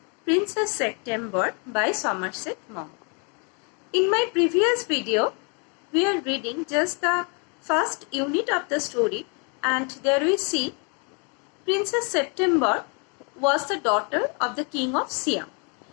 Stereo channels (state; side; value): quieter; right; 35.9 dB